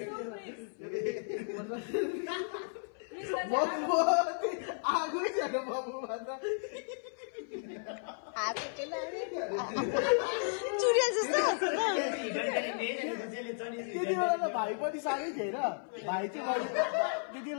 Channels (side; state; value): right; silent; 55 dB below the other